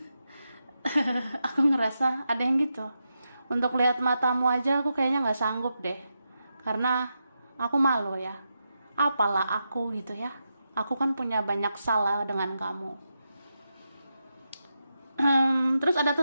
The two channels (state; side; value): inverted; both; correlation -0.87